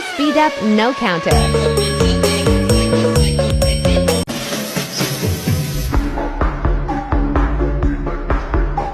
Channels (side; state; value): both; identical; correlation 1.00